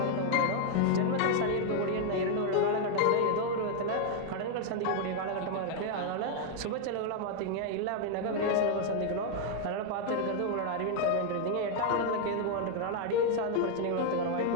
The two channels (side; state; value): both; different; correlation 0.00